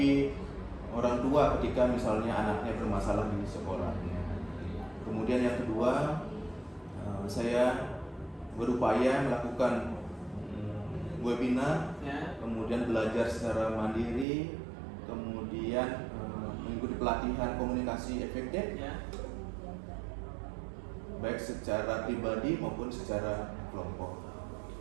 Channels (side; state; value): left; drops out; at 14.2 s